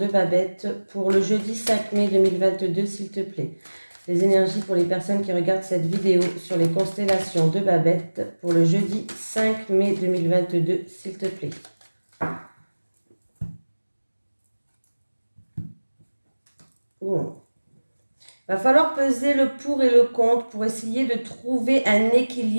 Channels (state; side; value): inverted; both; correlation -1.00